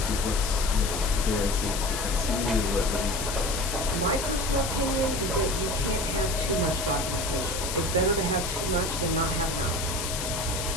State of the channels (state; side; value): noise; left; hiss, 4 dB below the sound